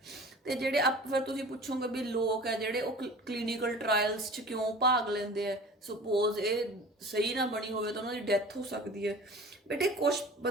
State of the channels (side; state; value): both; normal; correlation 0.41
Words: ਤੇ ਜਿਹੜੇ ਫਿਰ ਤੁਸੀਂ ਪੁੱਛੋਗੇ ਵੀ ਲੋਕ ਹੈ ਜਿਹੜੇ ਉਹ ਕਲੀਨਿਕਲ ਟ੍ਰਾਇਲਸ 'ਚ ਕਿਉਂ ਭਾਗ ਲੈਂਦੇ ਆ, ਸਪੋਜ਼ ਇਹ ਸਹੀ ਨਾ ਬਣੀ ਹੋਵੇ ਤਾਂ ਉਹਨਾਂ ਦੀ ਡੈਥ ਹੋ ਸਕਦੀ ਹੈ। ਬੇਟੇ ਕੁਝ